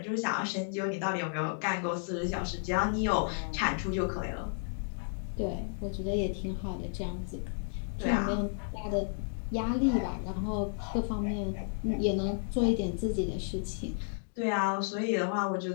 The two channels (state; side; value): silent; right; digital silence